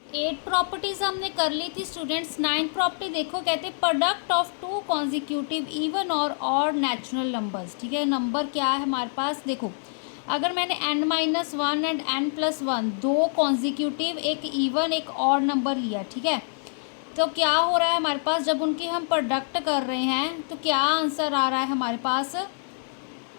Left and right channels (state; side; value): silent; right; digital silence